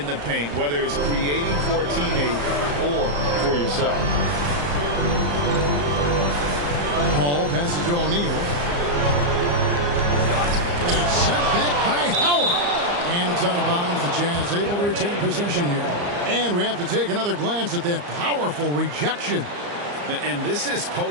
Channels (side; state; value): left; late; 34 ms